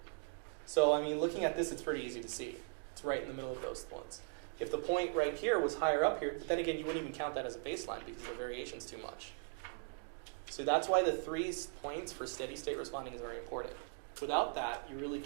So, I mean, looking at this, it's pretty easy to see. It's right in the middle of those points. If the point right here was higher up here, then again, you wouldn't even count that as a baseline because the variation's too much. So that's why the 3 points for steady state responding is very important. Without that, you really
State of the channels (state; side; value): silent; left; 52 dB below the other